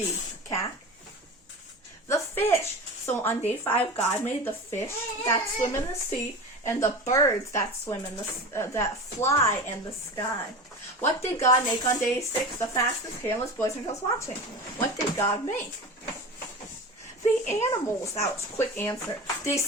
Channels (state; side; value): normal; both; correlation 0.31